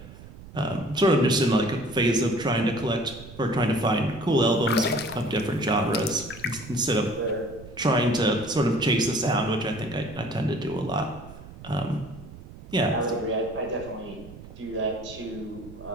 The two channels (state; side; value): noise; right; rumble, 17 dB below the sound